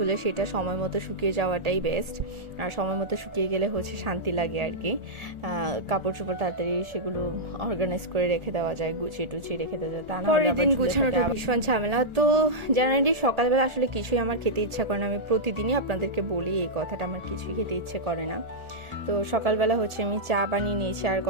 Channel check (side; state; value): left; late; 1.4 ms